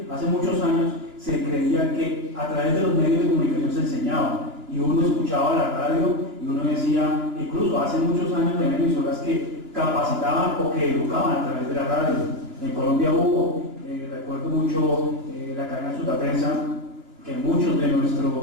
hace muchos años, se creía que a través de los medios de comunicación se enseñaba, y uno escuchaba la radio y uno decía, incluso hace muchos años de emisoras que capacitaban o que educaban a través de la radio. En Colombia hubo, recuerdo mucho la cadena Sutaprensa, que muchos de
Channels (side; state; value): left; late; 2.9 ms